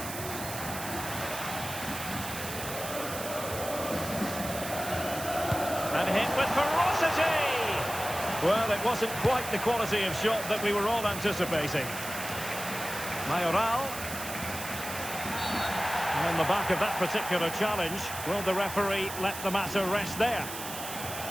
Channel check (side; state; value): right; noise; hiss, 8 dB below the sound